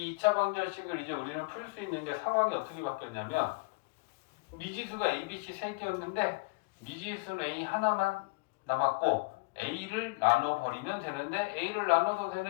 2차 방정식을 이제 우리는 풀 수 있는 게 상황이 어떻게 바뀌었냐면 미지수가 A, B, C 3개였는데 미지수는 A 하나만 남았고 A를 나눠버리면 되는데 A를 나눠도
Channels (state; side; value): quieter; right; 29.0 dB